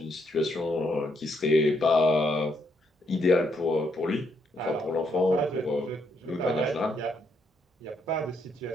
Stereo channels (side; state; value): both; normal; correlation 0.75